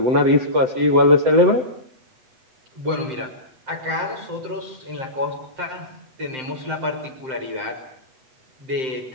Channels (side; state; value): left; late; 7.7 ms